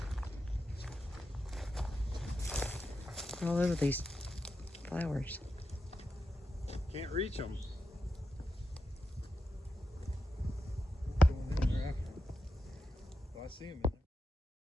They're all over these flowers. Can't reach them. I see them.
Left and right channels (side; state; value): both; normal; correlation 0.87